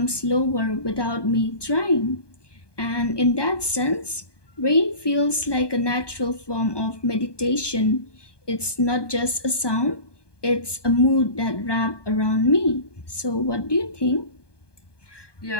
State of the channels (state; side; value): late; right; 1.2 ms